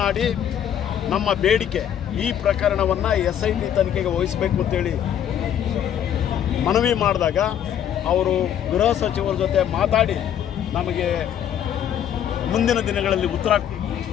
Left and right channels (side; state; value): right; quieter; 9.8 dB